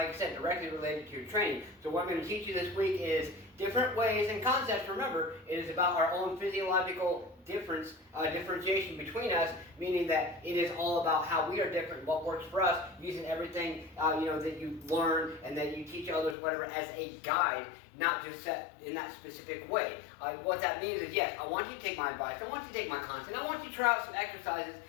I said, directly related to your training. So what I'm going to teach you this week is different ways and concepts. Remember, it is about our own physiological differentiation between us, meaning that it is all about how we are different, what works for us, using everything that you learn and that you teach others, whatever, as a guide, not just set in that specific way. What that means is, yes, I want you to take my advice, I want you to take my content, I want you to try out some exercises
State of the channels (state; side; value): drops out; right; at 16.4 s